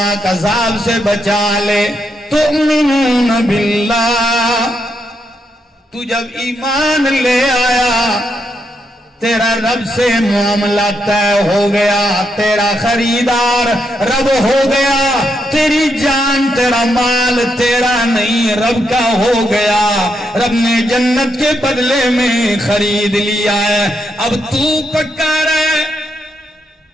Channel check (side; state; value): both; normal; correlation 0.80